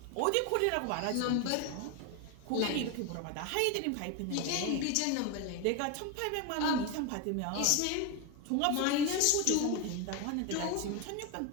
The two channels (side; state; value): both; different; correlation 0.02